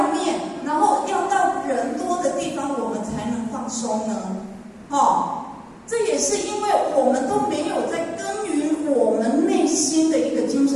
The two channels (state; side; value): identical; both; correlation 1.00